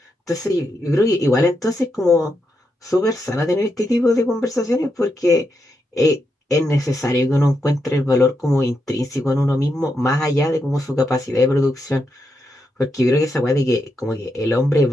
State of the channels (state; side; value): normal; both; correlation 0.83